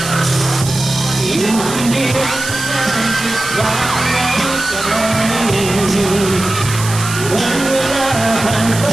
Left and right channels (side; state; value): right; noise; hiss, 8 dB below the sound